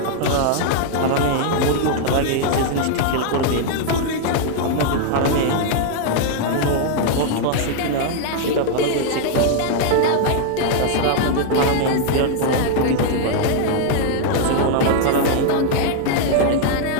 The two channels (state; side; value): different; both; correlation 0.00